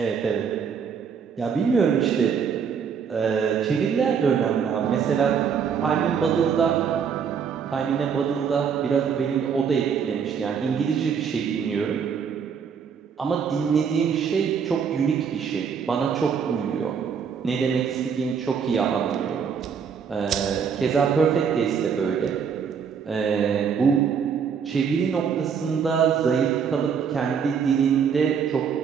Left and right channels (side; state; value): left; quieter; 6.8 dB